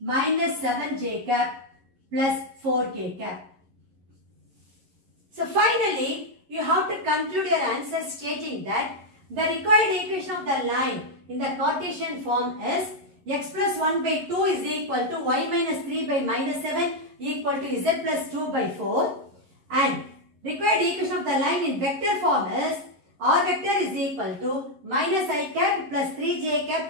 7j cap plus 4k cap. So finally, you have to conclude your answer stating that the required equation of the line in the Cartesian form is x plus 1 by 2 is equal to y minus 3 by minus 7 equal to z plus 2 by 4, and required equation of the line in vector form is R vector is equal to minus I cap plus 3j cap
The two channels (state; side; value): late; left; 11 ms